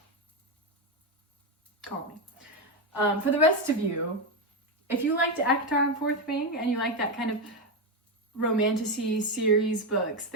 Call me. For the rest of you, if you liked ACOTAR and Fourth Wing, and you like that kind of romantasy series books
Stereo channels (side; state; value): both; normal; correlation 0.10